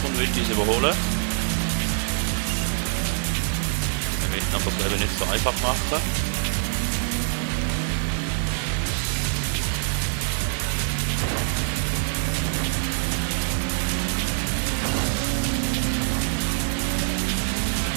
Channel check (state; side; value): silent; left; 62 dB below the other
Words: und will uns überholen. Wir wollen aber das Leben nicht so einfach machen.